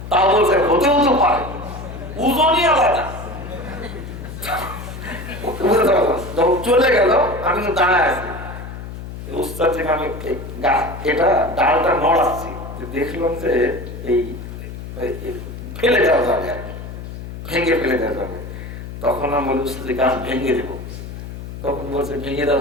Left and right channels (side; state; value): left; noise; hum, 10 dB below the sound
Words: তাও বলছে হতেও তো পারে, ওজনই আলাদা। যখন চলে গেল আমি তো দাঁড়ায় আছি, উস্তাদ থেকে আমি এটা ডালটা নড়াচ্ছি, দেখলাম যে এই ফেলে দেওয়া যাবে আর কি, ভেঙে ফেলে দেওয়া যাবে। তখন আমি বলি উস্তাদ গাছ ভেঙে দেবো। তখন বলছে ভেঙে দেওয়া